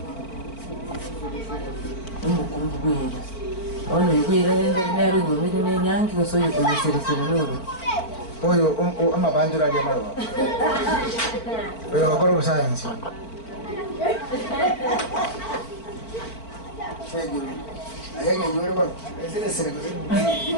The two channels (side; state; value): right; late; 4.5 ms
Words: Ono kwira nero ngomiro ne nyangi kusoyo kuseresera loro. Oyo ama bandura ya mara. Oyo akoro science. Sego. Ayanga yore ba. Ese sere ko.